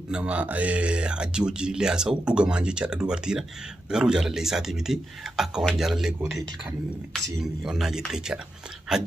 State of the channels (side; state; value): both; normal; correlation 0.87